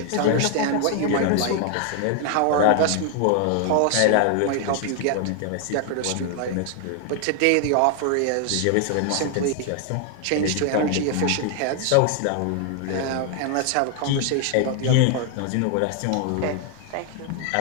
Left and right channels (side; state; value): both; different; correlation 0.00